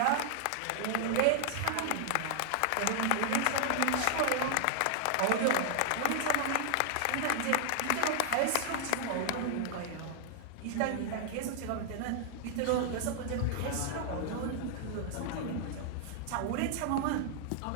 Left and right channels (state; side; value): different; both; correlation 0.00